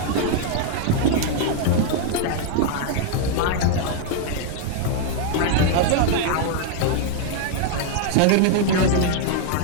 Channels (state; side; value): different; both; correlation 0.00